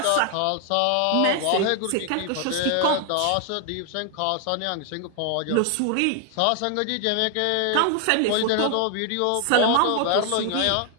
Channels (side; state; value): both; different; correlation 0.00